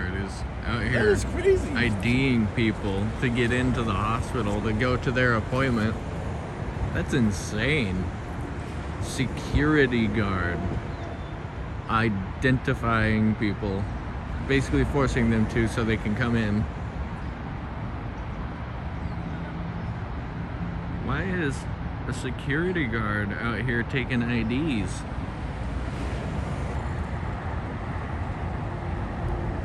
is out That here is crazy. IDing people to get into the hospital to go to their appointment. That's insane. Security guard identifying people, basically forcing them to so they can come in. Why is a security guard out here taking IDs?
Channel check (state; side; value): identical; both; correlation 1.00